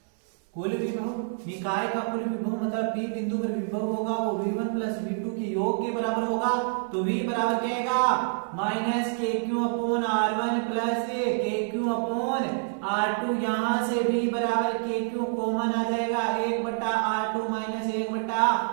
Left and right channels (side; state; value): left; silent; digital silence